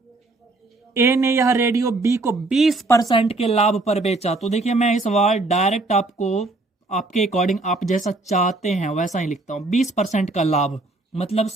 ए ने यह रेडियो बी को 20% के लाभ पर बेचा। तो देखिए मैं इस बार डायरेक्ट आपको आपके अकॉर्डिंग आप जैसा चाहते हैं वैसा ही लिखता हूं। 20% का लाभ मतलब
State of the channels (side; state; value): left; quieter; 3.1 dB